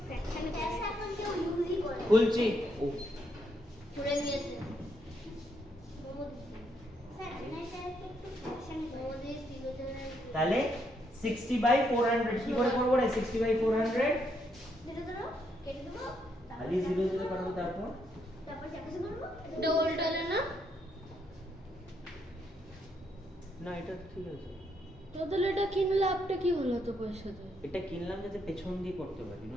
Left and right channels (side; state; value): both; normal; correlation 0.75